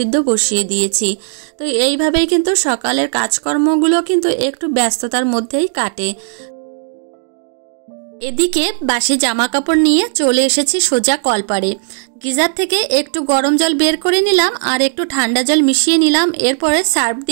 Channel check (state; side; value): silent; left; digital silence